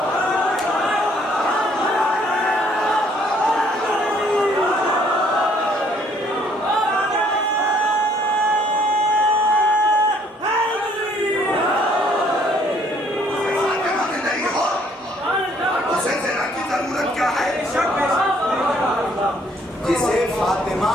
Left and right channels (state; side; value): normal; both; correlation 0.63